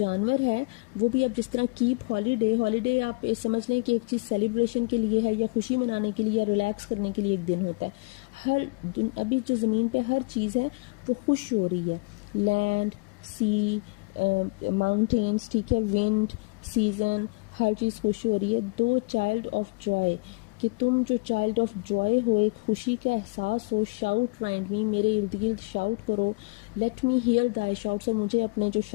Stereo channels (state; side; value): quieter; right; 29.1 dB